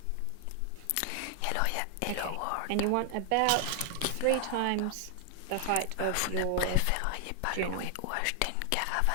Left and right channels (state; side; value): different; both; correlation 0.00